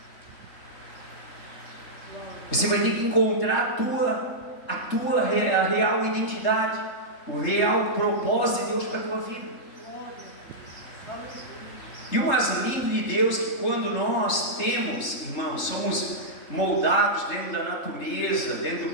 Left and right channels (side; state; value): right; late; 3.7 ms